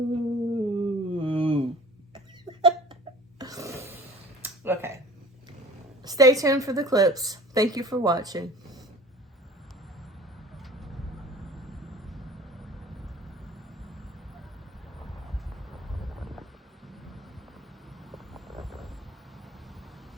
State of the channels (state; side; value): normal; both; correlation 0.45